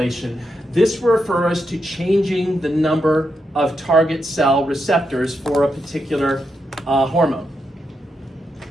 This refers to changing the number of target cell receptors for a particular hormone.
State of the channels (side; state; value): both; normal; correlation 0.84